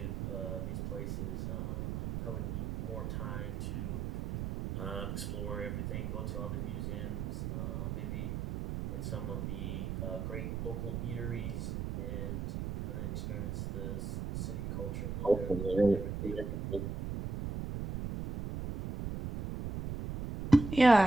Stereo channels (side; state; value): right; noise; rumble, 3 dB below the sound